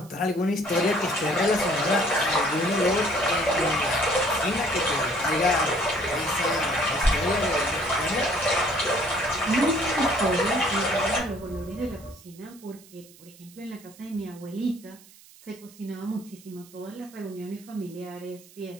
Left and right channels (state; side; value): noise; right; hiss, 23 dB below the sound